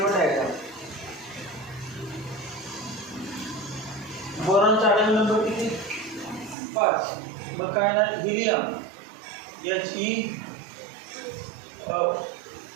वर द्यायचा. बोरॉनचा आटम नंबर किती 5. मग काय ना हिलियम He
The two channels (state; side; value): drops out; left; at 6.6 s